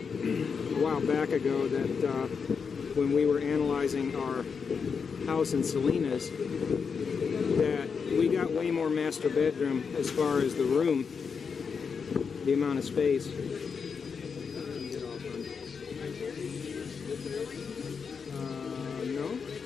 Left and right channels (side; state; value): right; quieter; 5.9 dB